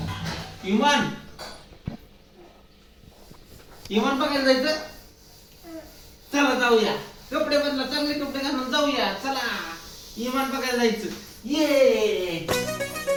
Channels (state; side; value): identical; both; correlation 1.00